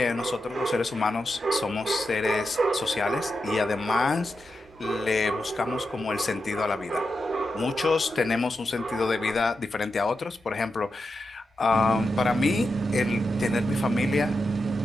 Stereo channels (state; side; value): normal; both; correlation 0.88